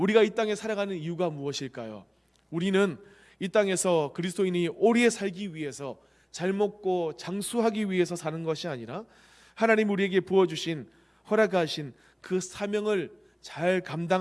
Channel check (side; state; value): both; identical; correlation 1.00